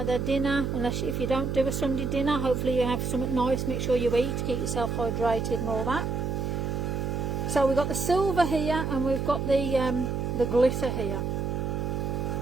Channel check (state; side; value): noise; right; hum, 1 dB below the sound